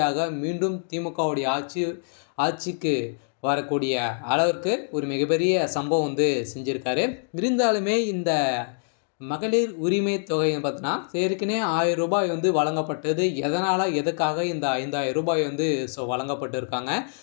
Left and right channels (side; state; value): right; silent; digital silence